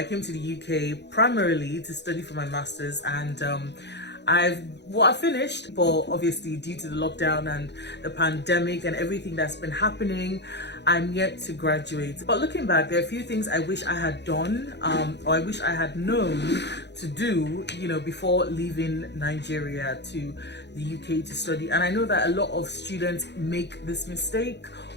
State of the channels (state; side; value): late; right; 0.50 ms